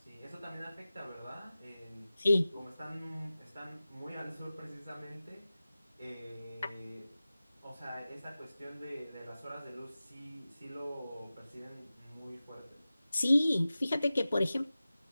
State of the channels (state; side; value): inverted; both; correlation -0.95